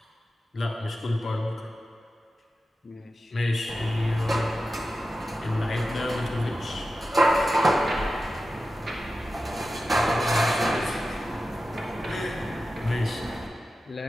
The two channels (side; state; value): both; normal; correlation 0.93